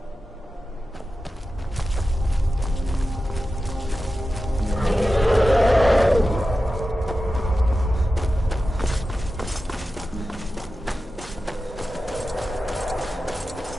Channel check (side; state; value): both; normal; correlation 0.93